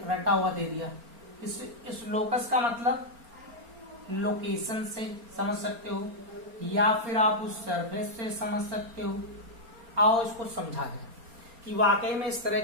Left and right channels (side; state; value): left; late; 4.3 ms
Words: रटा हुआ दे दिया। इस लोकस का मतलब लोकेशन से समझ सकते हो या फिर आप उस सरफेस से समझ सकते हो। आओ इसको समझा जाए कि वाकई में इस तरह